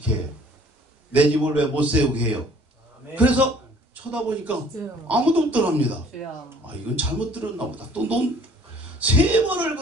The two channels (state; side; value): normal; both; correlation 0.55